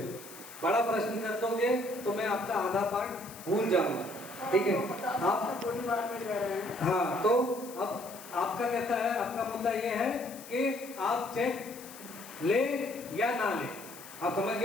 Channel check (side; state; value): left; noise; hiss, 16 dB below the sound